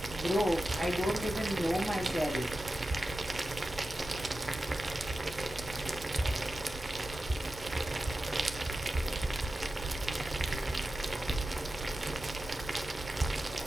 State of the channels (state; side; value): normal; both; correlation 0.93